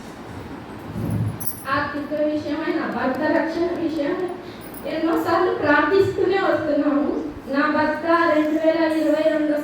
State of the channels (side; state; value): both; identical; correlation 1.00